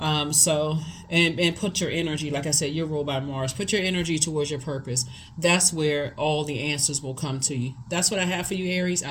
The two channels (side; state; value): both; identical; correlation 1.00